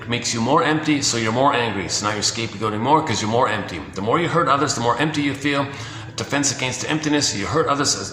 makes you more empty, so you're more angry. So now you're scapegoating more because you're more empty. The more you hurt others, the more empty you feel. Defense against emptiness. You hurt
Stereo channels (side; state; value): both; identical; correlation 1.00